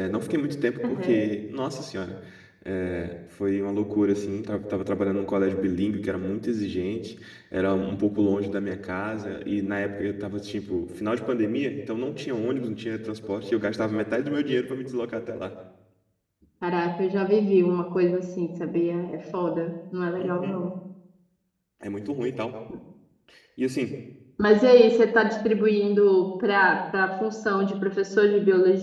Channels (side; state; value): both; identical; correlation 1.00